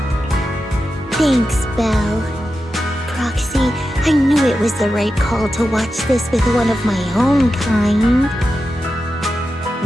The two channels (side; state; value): both; normal; correlation 0.90